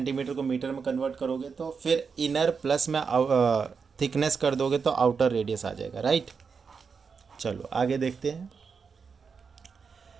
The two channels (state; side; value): quieter; left; 5.6 dB